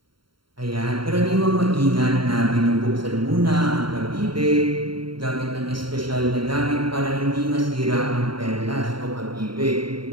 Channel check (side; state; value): left; late; 0.73 ms